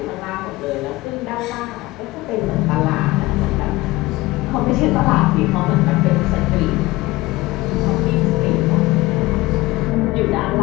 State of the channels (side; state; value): right; quieter; 19.6 dB